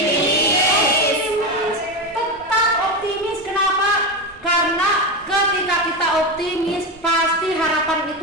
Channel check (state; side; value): normal; both; correlation 0.16